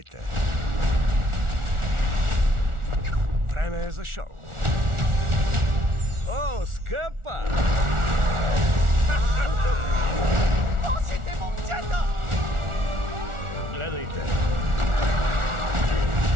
Време е за шоу. О, скъпа! Лошите момчета! Гледайте.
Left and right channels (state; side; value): late; left; 1.4 ms